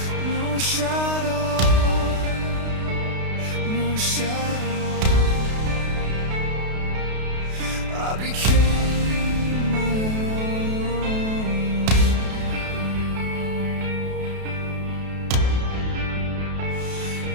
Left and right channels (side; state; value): left; late; 32 ms